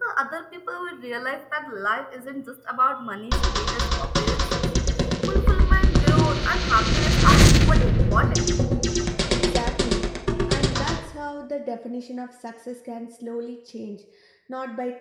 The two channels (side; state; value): both; identical; correlation 1.00